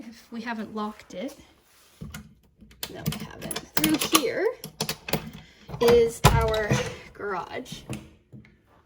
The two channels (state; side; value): identical; both; correlation 1.00